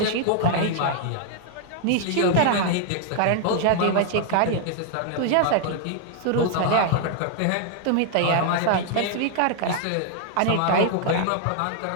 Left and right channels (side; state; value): both; different; correlation 0.00